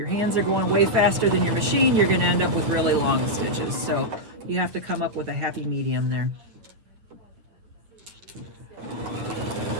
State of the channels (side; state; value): left; late; 9.1 ms